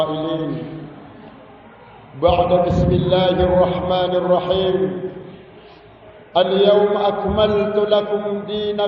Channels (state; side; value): identical; both; correlation 1.00